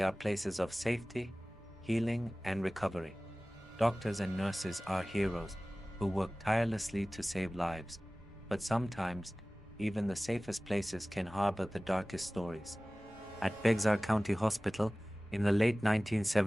are places of safety, healing, and recovery. Doctors and nurses are heroes who work tirelessly to save lives, but sometimes even the safest places can harbor the darkest stories. At Bexar County Hospital, in the late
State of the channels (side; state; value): both; normal; correlation 0.98